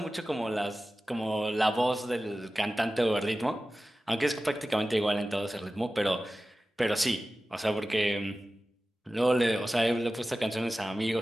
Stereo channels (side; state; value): both; normal; correlation 0.95